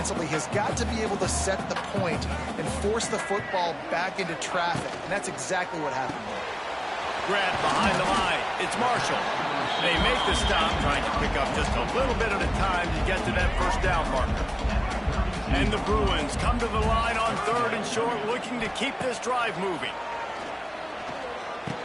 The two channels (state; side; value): identical; both; correlation 1.00